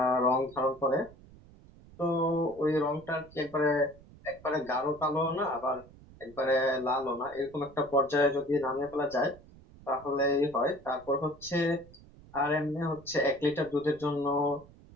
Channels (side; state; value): right; noise; rumble, 22 dB below the sound